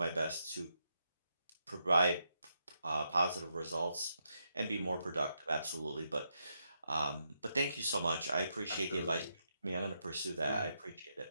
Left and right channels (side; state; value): both; inverted; correlation -0.81